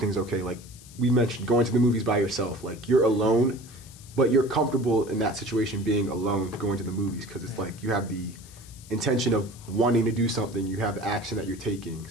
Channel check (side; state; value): left; noise; hiss, 21 dB below the sound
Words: okay. Like, we mentioned going to the movies by yourself. Like, you're alone, but you're comfortable in that situation being alone going to the movies because it's like you have the intention of wanting to do something, you have action that you're taking.